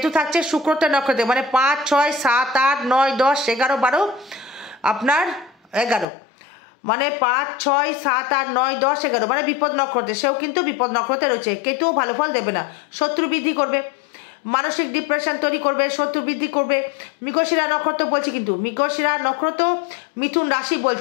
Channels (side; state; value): right; drops out; at 6.1 s